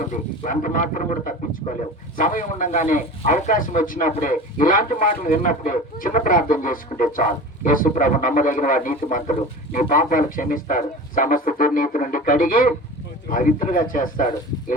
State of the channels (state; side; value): normal; both; correlation 0.34